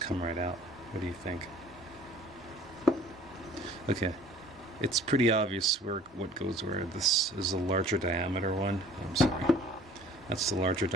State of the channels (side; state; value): both; normal; correlation 0.51